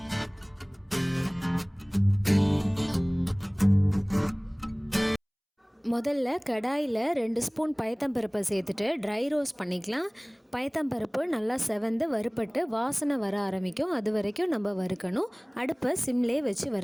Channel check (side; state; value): both; identical; correlation 1.00